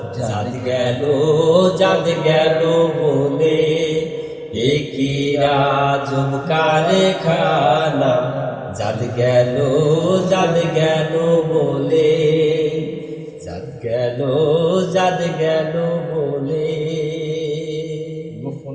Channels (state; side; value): identical; both; correlation 1.00